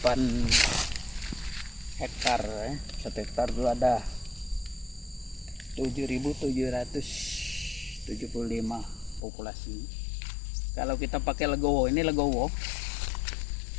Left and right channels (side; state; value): right; drops out; at 9.2 s